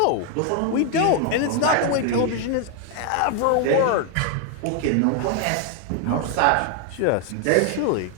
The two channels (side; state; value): both; different; correlation 0.00